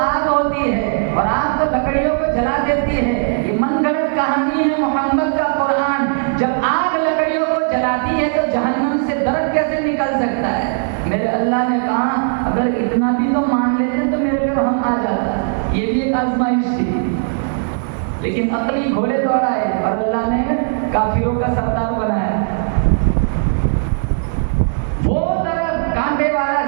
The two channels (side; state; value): left; silent; digital silence